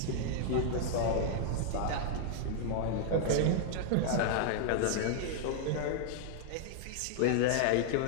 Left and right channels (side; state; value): both; different; correlation -0.01